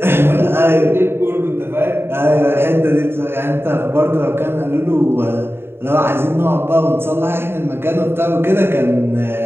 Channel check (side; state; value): left; late; 0.11 ms